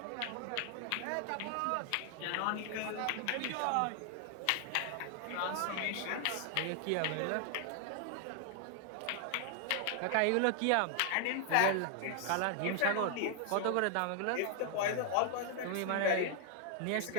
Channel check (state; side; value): different; both; correlation 0.00